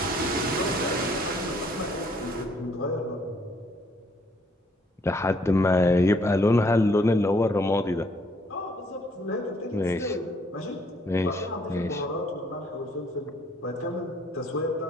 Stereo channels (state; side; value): normal; both; correlation 0.66